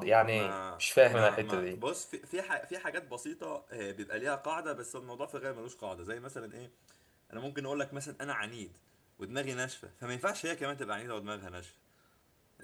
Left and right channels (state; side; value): identical; both; correlation 1.00